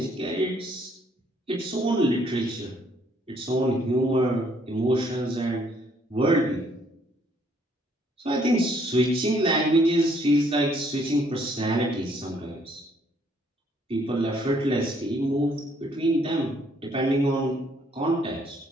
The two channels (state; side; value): normal; both; correlation 0.66